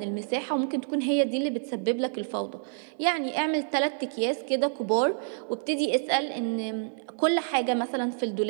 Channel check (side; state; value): left; silent; 59 dB below the other